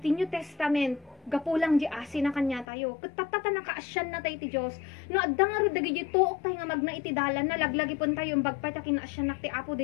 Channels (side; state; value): right; drops out; at 2.7 s